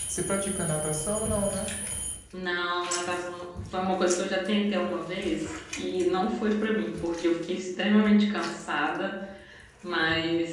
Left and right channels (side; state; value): both; identical; correlation 1.00